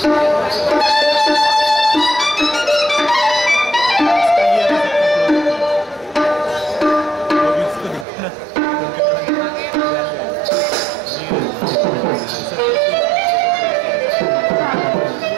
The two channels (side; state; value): left; drops out; at 8.1 s